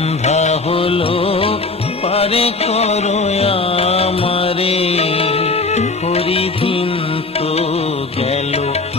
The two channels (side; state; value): right; quieter; 3.6 dB